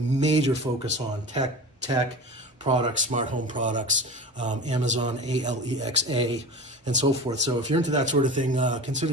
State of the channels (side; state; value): both; normal; correlation 0.33